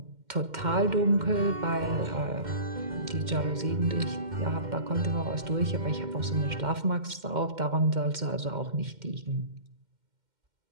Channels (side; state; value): left; late; 2.1 ms